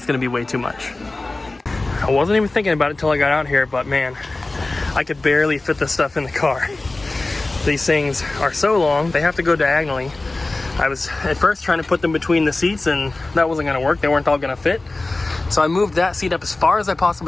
going to be way too much. I wasn't even thinking about it till I got out here, but man, I could barely fit this stuff in the car. These things are so long, they have to go diagonally. I was at first trying to put them between the seats, and that wasn't going to work. They weren't all going to fit. So I moved that seat up as far as I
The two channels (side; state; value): right; quieter; 3.1 dB